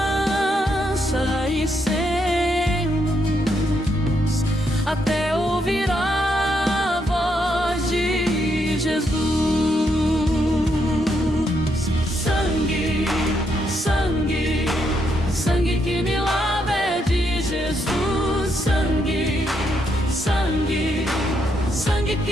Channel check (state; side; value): normal; both; correlation 0.77